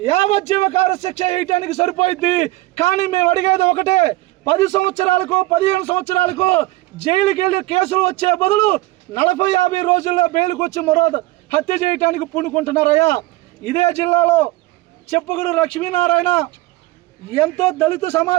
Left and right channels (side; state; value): left; quieter; 19.1 dB